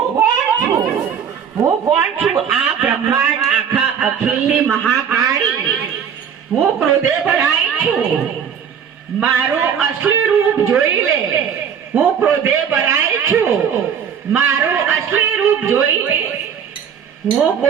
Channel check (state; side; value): quieter; left; 7.8 dB